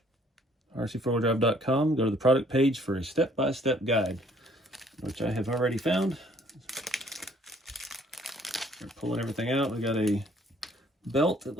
rc4wd.com. Go to the product page for a step-by-step guide, which I have already found. We're pulling everything out. We got a belt, it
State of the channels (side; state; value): both; normal; correlation 0.61